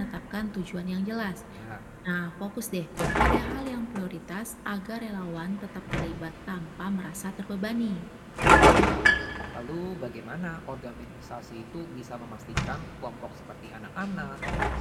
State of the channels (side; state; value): both; identical; correlation 1.00